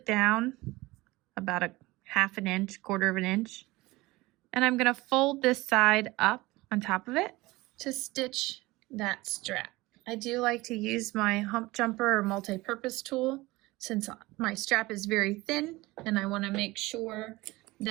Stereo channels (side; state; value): left; quieter; 20.6 dB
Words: down about a 1/2 inch, 1/4 inch. And I'm going to fold this side up on top of it to stitch that strap. I do like to use my hump jumper or multi-purpose tool since my strap is very thin, and I want to make sure